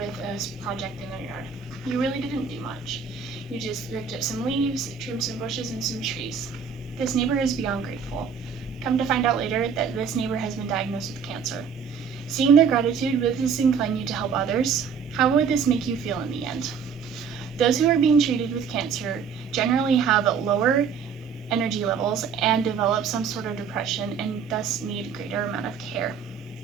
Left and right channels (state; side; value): quieter; left; 6.4 dB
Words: a project in their yard. You really didn't do much. You just ripped up some leaves, trimmed some bushes, and some trees. This neighbor is beyond grateful. Come to find out later that this neighbor has been diagnosed with cancer. Seeing their gratitude, would this incline you to help others? How would this make you feel in the end? Those who are being treated with cancer generally have lower energy levels and develop some sort of depression and thus need greater amount of care.